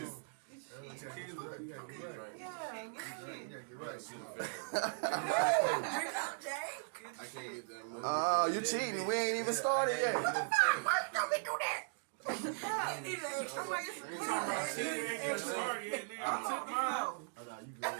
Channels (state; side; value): silent; left; digital silence